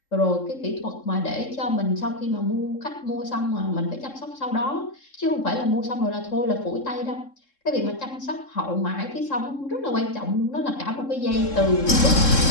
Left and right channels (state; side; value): late; right; 3.7 ms